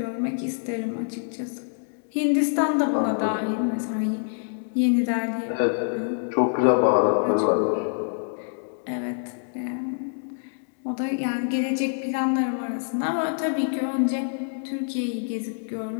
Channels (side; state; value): right; silent; digital silence